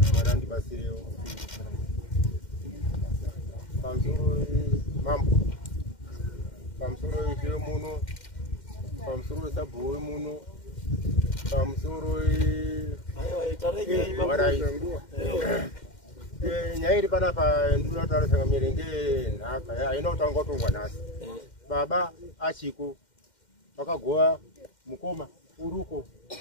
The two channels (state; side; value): late; right; 2.1 ms